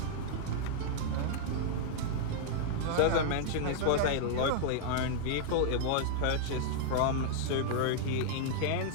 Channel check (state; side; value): different; both; correlation -0.01